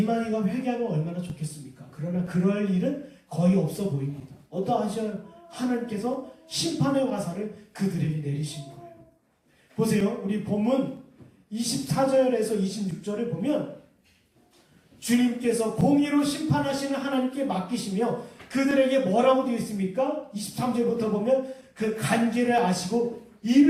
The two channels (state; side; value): identical; both; correlation 1.00